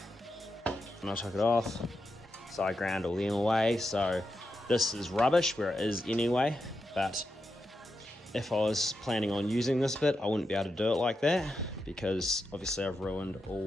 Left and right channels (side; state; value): both; normal; correlation 0.86